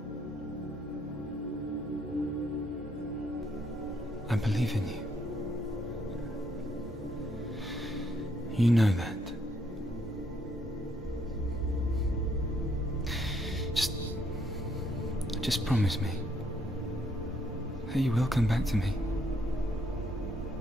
I believe in you. You know that. Just promise me that you will come back to me.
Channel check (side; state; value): both; normal; correlation 0.71